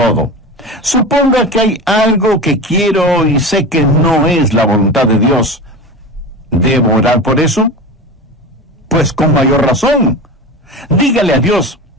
Suponga que hay algo que quiero y sé que no es la voluntad de Dios. ¿Debo orar por eso? Pues con mayor razón. Dígale a Dios,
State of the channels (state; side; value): normal; both; correlation 0.28